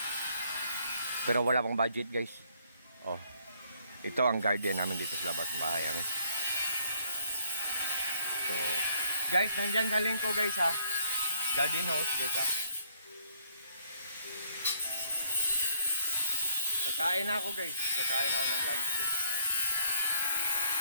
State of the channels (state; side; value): inverted; both; correlation -0.66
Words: Pero wala pang budget guys. Oh. Ito ang garden namin dito sa labas ng bahay namin. So, guys, nandyan sa link ko guys garden house guys Kakain na ako guys. Kakain ako ng lunch guys.